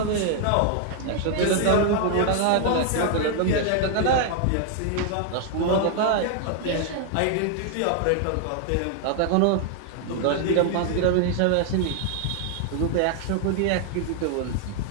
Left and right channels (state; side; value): different; both; correlation 0.00